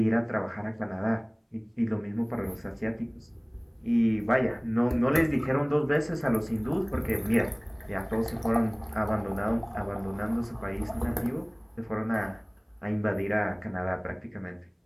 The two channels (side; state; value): both; identical; correlation 1.00